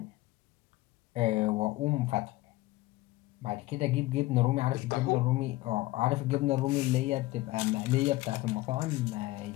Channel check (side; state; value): right; quieter; 18.7 dB